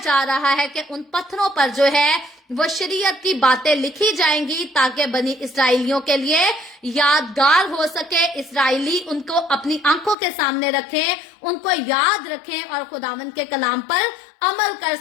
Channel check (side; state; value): right; drops out; at 10.2 s